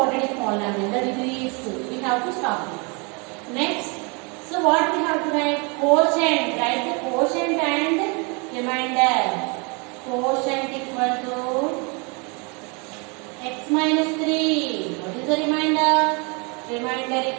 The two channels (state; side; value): quieter; left; 31.9 dB